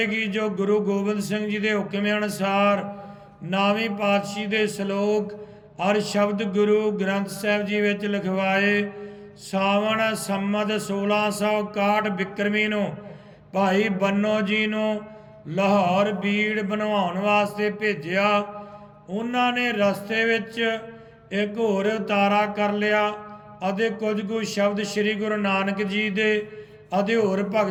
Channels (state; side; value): identical; both; correlation 1.00